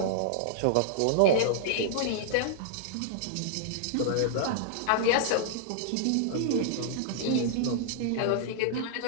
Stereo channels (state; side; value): different; both; correlation -0.01